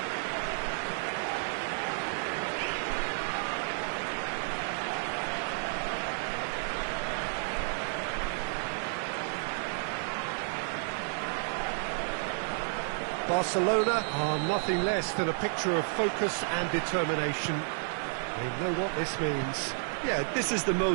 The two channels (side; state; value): left; silent; 57 dB below the other